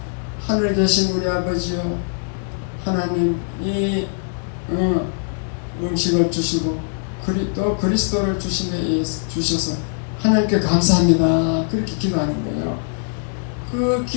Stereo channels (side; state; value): right; silent; digital silence